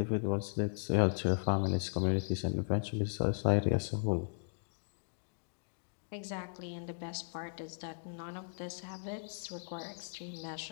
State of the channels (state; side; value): silent; right; digital silence